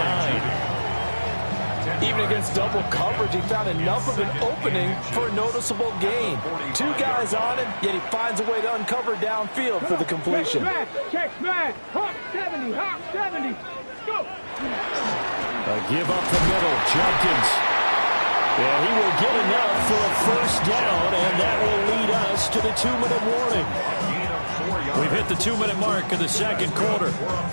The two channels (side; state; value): both; inverted; correlation -1.00